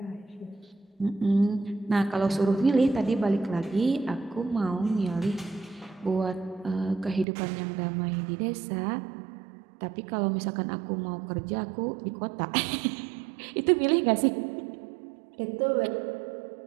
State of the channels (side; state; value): left; drops out; at 7.2 s